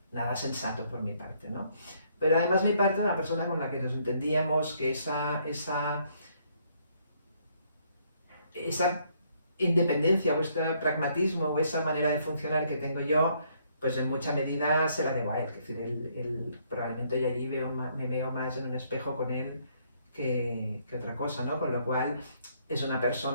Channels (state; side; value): inverted; both; correlation -0.69